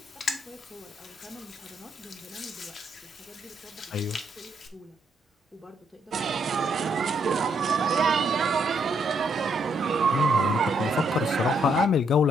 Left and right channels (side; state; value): both; normal; correlation 0.74